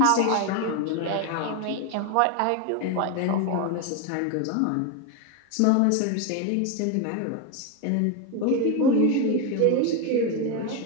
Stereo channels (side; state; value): both; different; correlation 0.02